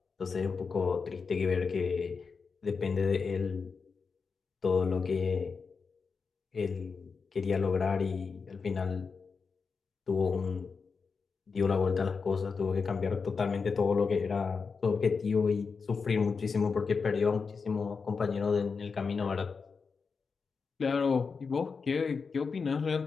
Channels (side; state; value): right; quieter; 5.1 dB